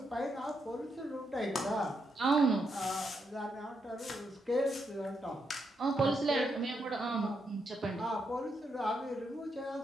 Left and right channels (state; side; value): normal; both; correlation 0.81